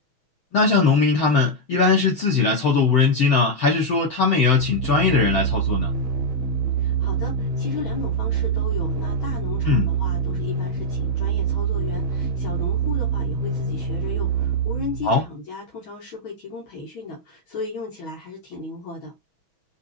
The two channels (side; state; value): right; late; 6.2 ms